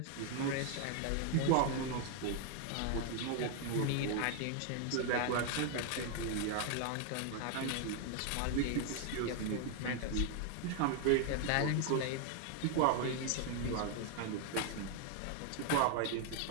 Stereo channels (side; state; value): both; different; correlation 0.00